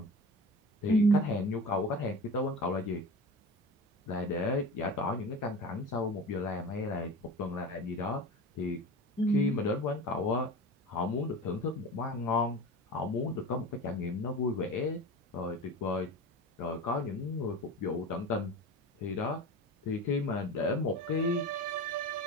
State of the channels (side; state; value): both; normal; correlation 0.32